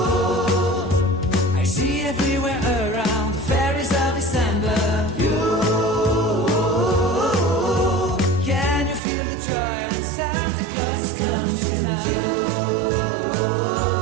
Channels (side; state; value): left; drops out; at 9.0 s